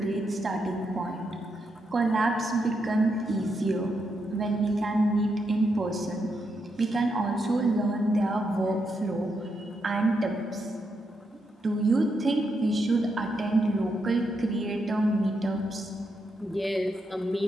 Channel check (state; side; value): normal; both; correlation 0.82